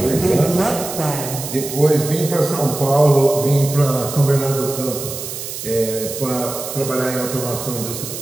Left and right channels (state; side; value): noise; right; hiss, 8 dB below the sound